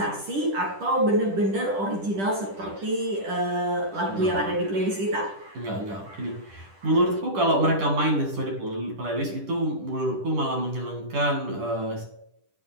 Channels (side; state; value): left; late; 10 ms